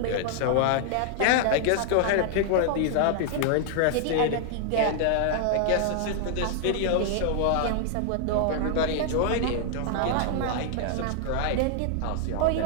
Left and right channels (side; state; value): both; different; correlation 0.00